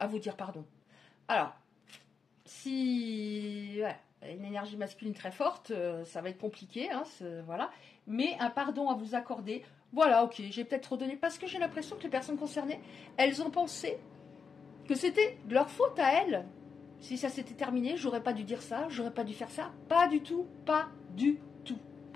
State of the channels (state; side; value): quieter; right; 5.7 dB